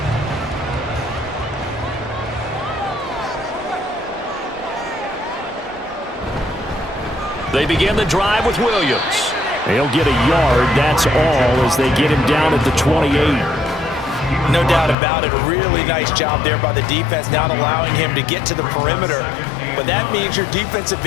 They begin the drive with Williams. They'll get a yard, that's all, as they get him down at the 28. No doubt about it. A really nice job there by the defense, not allowing him to get to the perimeter. But that means your defensive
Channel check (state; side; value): drops out; right; at 15.0 s